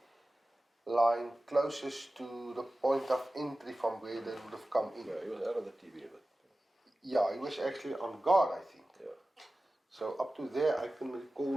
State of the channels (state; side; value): normal; both; correlation 0.96